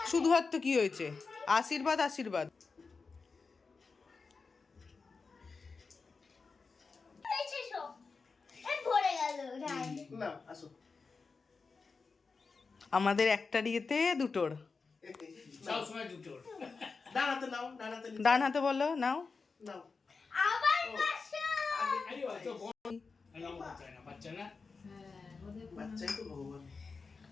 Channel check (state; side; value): quieter; right; 4.6 dB